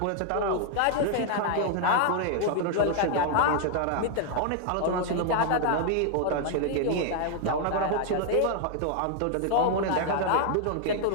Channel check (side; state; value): both; different; correlation 0.00